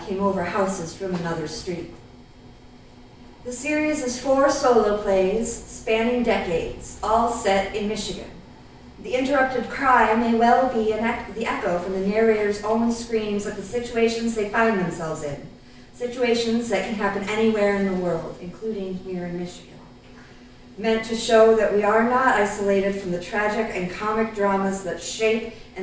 came over houses from another street. The series is 4 solo plays spanning decades, all set in Michigan. The interrupted cry may well be the echo from the narrator's own screams at the situations they find themselves in, situations that can happen anywhere in the world, including here in Michigan. Meant to show that we are not isolated from the tragic and comic dramas that shape,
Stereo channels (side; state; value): both; identical; correlation 1.00